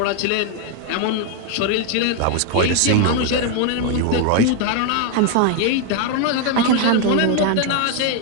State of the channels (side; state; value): both; different; correlation 0.01